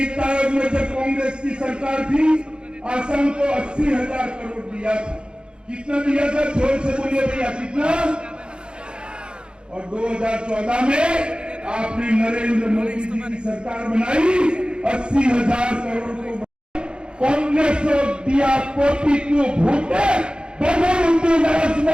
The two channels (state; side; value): late; left; 0.052 ms